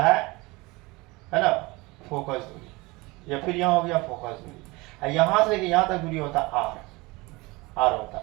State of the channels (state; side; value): quieter; left; 23.5 dB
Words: है ना, फोकस दूरी, या फिर यहाँ हो गया फोकस दूरी। यहाँ से यहाँ तक दूरी होता है आर होता।